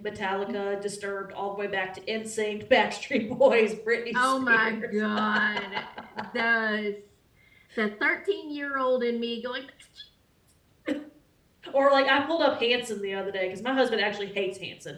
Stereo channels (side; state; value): both; identical; correlation 1.00